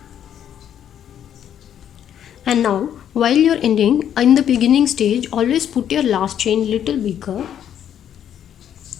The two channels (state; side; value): quieter; right; 9.8 dB